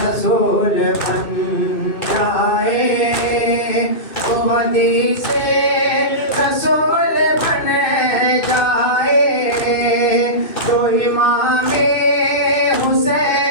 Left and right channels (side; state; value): right; late; 2.6 ms